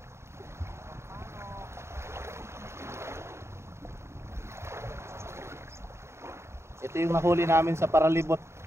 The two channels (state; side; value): late; left; 0.13 ms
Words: Ito yung nahuli namin sa paralibot.